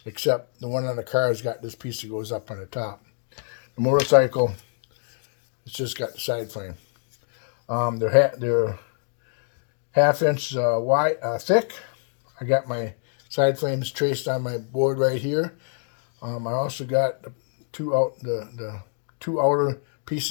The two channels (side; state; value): right; silent; digital silence